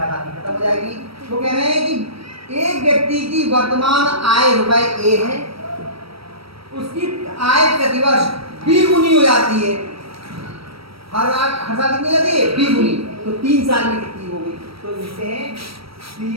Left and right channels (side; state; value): left; late; 0.75 ms